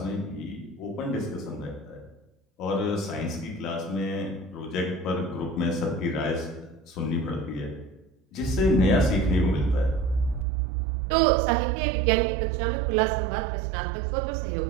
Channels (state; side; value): drops out; left; at 10.5 s